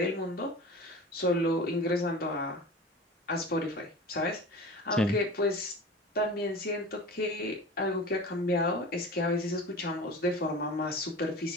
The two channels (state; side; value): normal; both; correlation 0.35